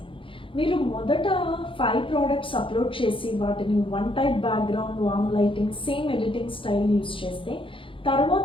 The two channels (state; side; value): late; right; 0.25 ms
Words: మీరు మొదట 5 ప్రోడక్ట్స్ అప్లోడ్ చేసి వాటిని one type background, warm lighting, same editing style use చేస్తే